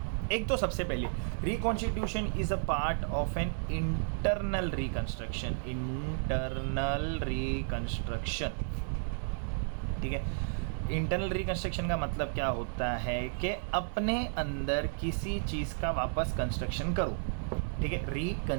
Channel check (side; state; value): left; silent; digital silence